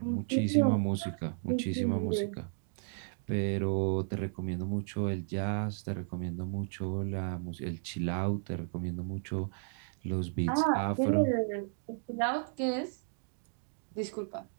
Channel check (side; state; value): left; silent; digital silence